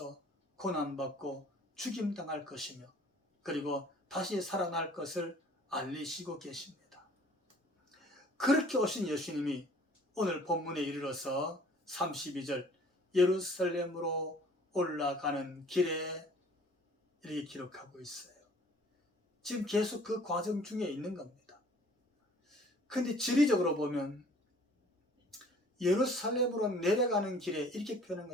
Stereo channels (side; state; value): both; normal; correlation 0.53